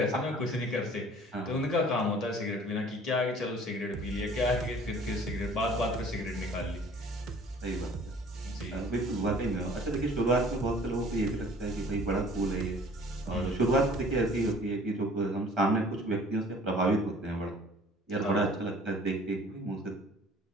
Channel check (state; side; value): normal; both; correlation 0.51